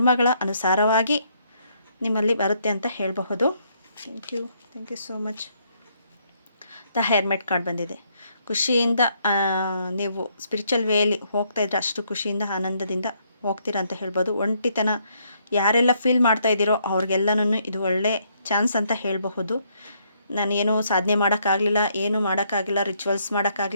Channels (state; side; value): inverted; both; correlation -0.71